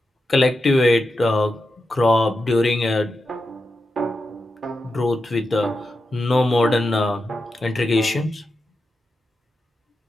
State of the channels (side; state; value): both; normal; correlation 0.89